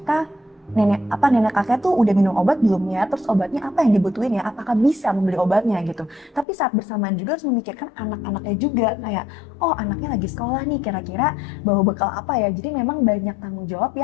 nenek kakek tuh udah minum obat belum ya, terus obatnya apa yang dibutuhin ya, apakah bisa membeli obatnya gitu. Tapi saat bersamaan juga harus memikirkan anak-anaknya juga, kayak oh anaknya lagi sekolah nih, kira-kira bawa bekal apa ya. Jadi memang banyak tanggung jawab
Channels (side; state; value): right; drops out; at 6.5 s